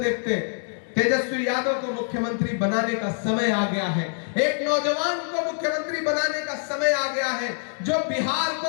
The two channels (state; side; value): silent; right; digital silence